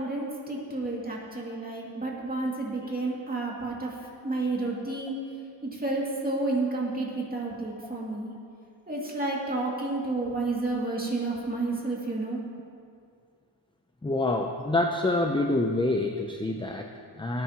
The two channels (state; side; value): normal; both; correlation 0.49